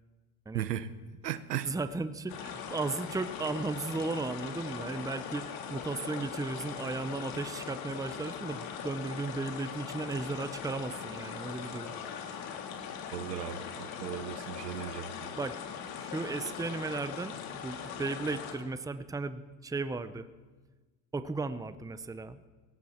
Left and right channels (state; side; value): normal; both; correlation 0.47